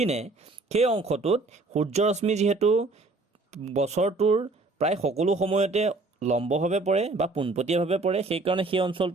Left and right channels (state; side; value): quieter; left; 3.3 dB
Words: সেই অংশটোত সূৰ্যৰশ্মি যিহেতু বছৰটোৰ প্ৰায় সকলো সময়তে লম্বভাৱে পৰে বা পোনপটীয়াভাৱে পৰে, সেইকাৰণে সেই